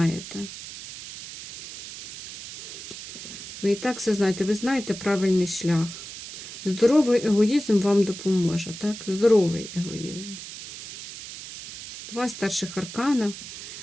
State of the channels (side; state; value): right; noise; hiss, 11 dB below the sound